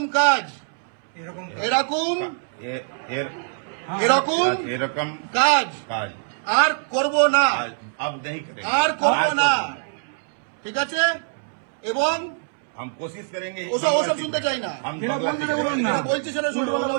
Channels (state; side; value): silent; left; 63 dB below the other